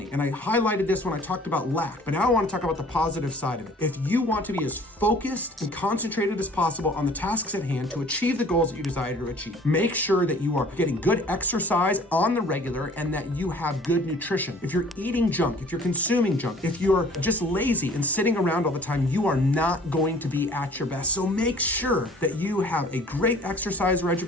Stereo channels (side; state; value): both; normal; correlation 0.51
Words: and I highlighted this when I talked about lack, but now I want to talk about the positive side of it. If you want to be as focused and concentrated as possible on the tasks at hand to achieve the goals that you desire to achieve, make sure that you are getting good exercise on the regular and that you have good nutrition. If you're eating junk, if you're consuming junk, if you're just lazy and sitting around all the time, you are not going to be at your best. So make sure that you have a great exercise